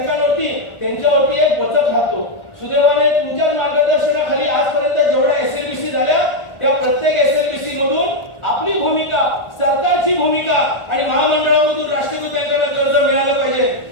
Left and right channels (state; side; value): late; right; 1.4 ms